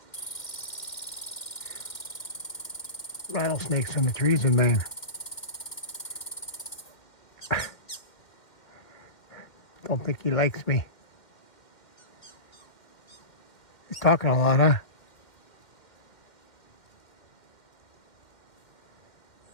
Rattlesnakes in the trees in Maine. Don't think he likes me. He's talking a lot, huh?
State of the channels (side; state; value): right; late; 2.1 ms